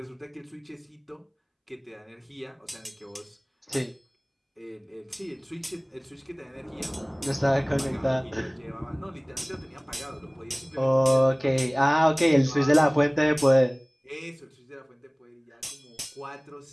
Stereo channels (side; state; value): both; identical; correlation 1.00